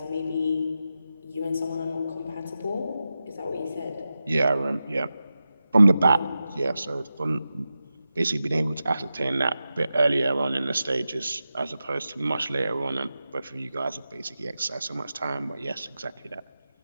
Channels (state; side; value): inverted; both; correlation -0.92